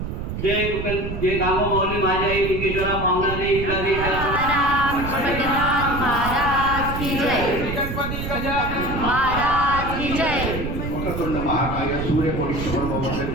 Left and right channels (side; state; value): right; noise; rumble, 5 dB below the sound